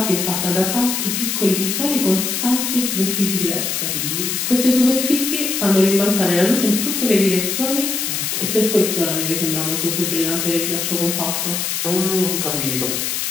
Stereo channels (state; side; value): noise; left; hiss, 1 dB below the sound